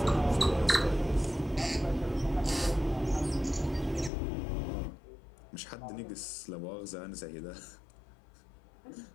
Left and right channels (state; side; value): drops out; right; at 4.1 s